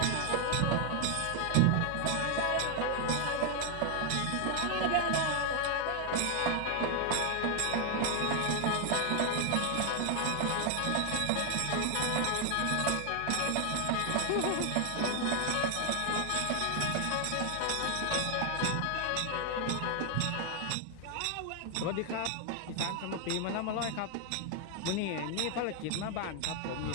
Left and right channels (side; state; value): both; different; correlation 0.00